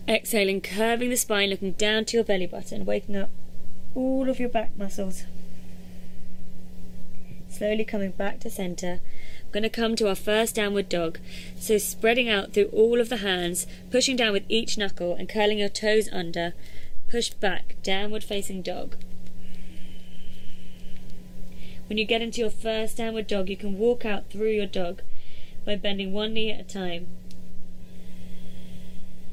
Exhaling, curving the spine, looking down to your belly button, waking up all of your back muscles. Slowly coming back to center. We're going to come to our first downward dog. So spreading out through all of the hands, pushing down with each knuckle and curling your toes under. Push back, downward facing dog. When you get into your first downward dog, you can walk out through your dog by bending one knee at a time.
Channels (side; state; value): both; identical; correlation 1.00